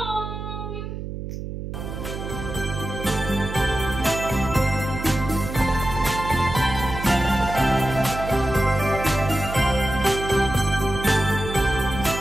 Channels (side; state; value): right; noise; hum, 7 dB below the sound